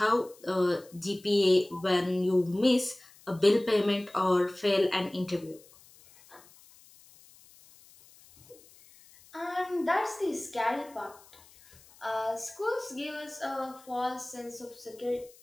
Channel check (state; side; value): noise; left; hiss, 25 dB below the sound